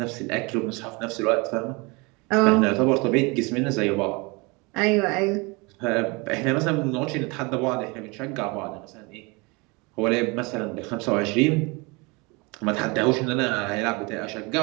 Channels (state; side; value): quieter; left; 27.4 dB